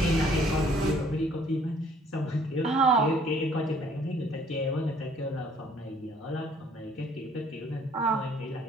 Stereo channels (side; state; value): both; normal; correlation 0.60